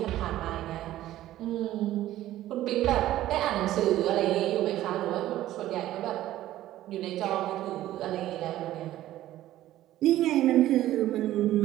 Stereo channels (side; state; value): left; quieter; 14.2 dB